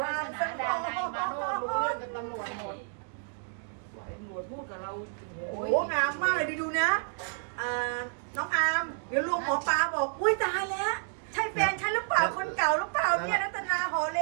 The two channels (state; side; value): silent; left; 58 dB below the other